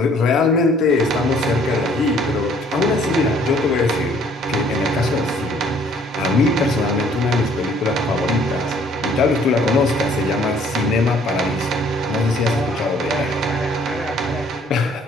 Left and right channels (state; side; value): normal; both; correlation 0.60